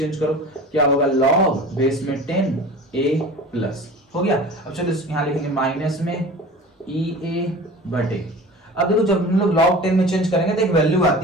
करो, क्या होगा, लॉग बेस में 10 ए प्लस हो गया। अब चलो यहाँ लिखेंगे माइनस में ई ए बटे। अब देखो जब हम लोग log 10 में चेंज करेंगे तो एक वैल्यू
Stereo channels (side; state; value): both; normal; correlation 0.38